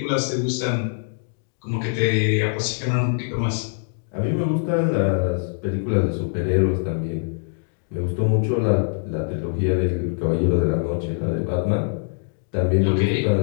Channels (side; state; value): right; silent; digital silence